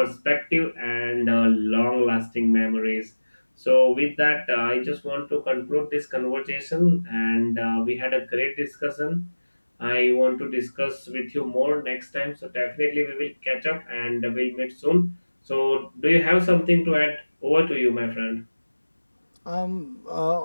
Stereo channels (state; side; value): inverted; both; correlation -1.00